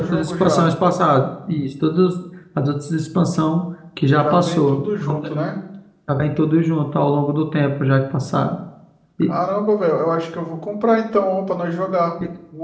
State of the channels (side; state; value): both; identical; correlation 1.00